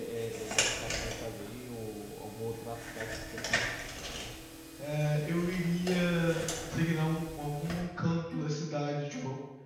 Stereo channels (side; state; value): both; identical; correlation 1.00